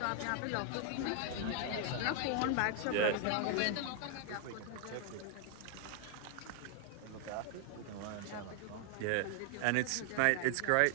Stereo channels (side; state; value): both; different; correlation 0.00